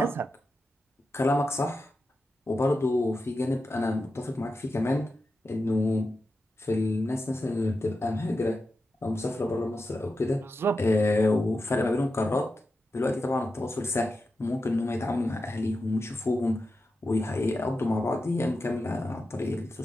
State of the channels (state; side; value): normal; both; correlation 0.90